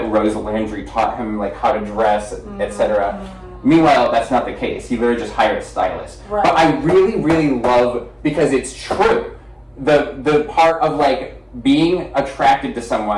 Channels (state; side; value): identical; both; correlation 1.00